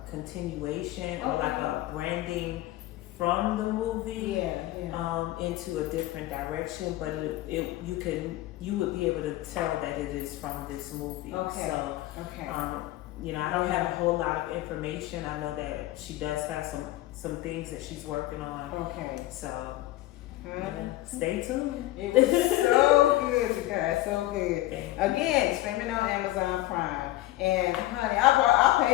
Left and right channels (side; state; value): right; quieter; 16.4 dB